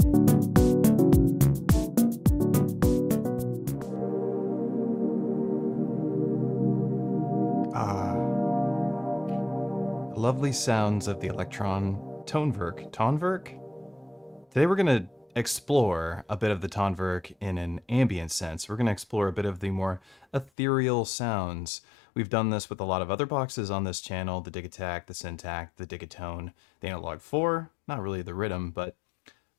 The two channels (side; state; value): right; drops out; at 20.5 s